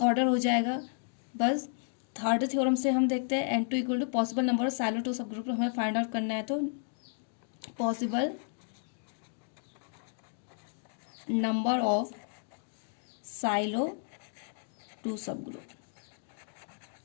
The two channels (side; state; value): right; silent; digital silence